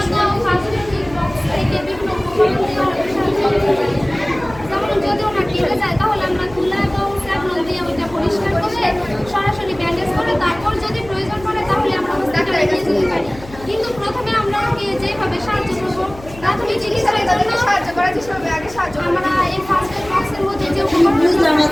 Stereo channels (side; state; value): left; noise; hum, 18 dB below the sound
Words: সরাসরি ব্যান্ডেজ করে তারপর যদি প্রয়োজন পড়ে তাহলে আমরা হসপিটালে নিয়ে যেতে পারি কিন্তু প্রথমে আমরা ওকে যেভাবে সাহায্য করবো প্রাথমিক চিকিৎসার জন্য সাহায্য করার চেষ্টা করবো আগে সাহায্য আমরা এই ফার্স্ট এড বক্সের মধ্যে যে বুঝলাম না